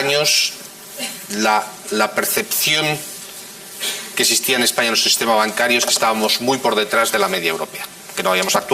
la percepción que existía en España en el sistema bancario es que estábamos muy por detrás de la media europea, que no habíamos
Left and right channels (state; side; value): identical; both; correlation 1.00